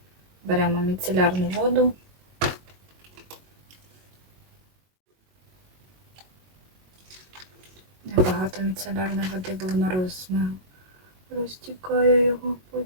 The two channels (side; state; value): left; late; 22 ms